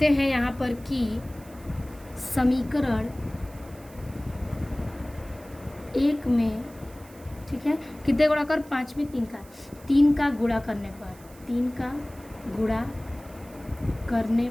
हैं यहाँ पर कि समीकरण 1 में, ठीक है, कितने गुणा कर 5 में 3 का गुणा करने पर, 3 का गुणा करने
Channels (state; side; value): noise; right; hiss, 24 dB below the sound